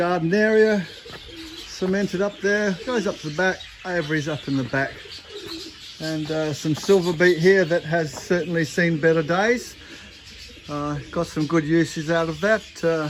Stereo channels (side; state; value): both; identical; correlation 1.00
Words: area, cemented up there, goes up to the back, aviary's up in the back. And some silver beet here that has certainly seen better days. Got some good uses out of that.